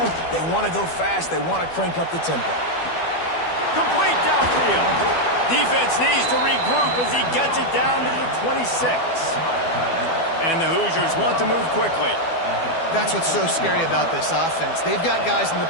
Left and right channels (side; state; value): right; late; 12 ms